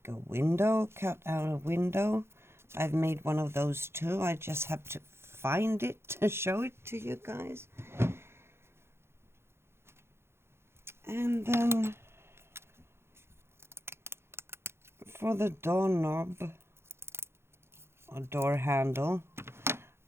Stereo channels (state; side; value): late; left; 0.12 ms